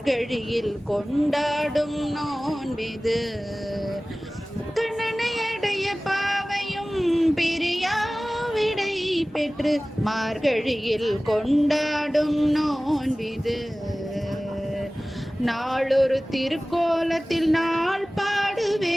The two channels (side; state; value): both; normal; correlation 0.98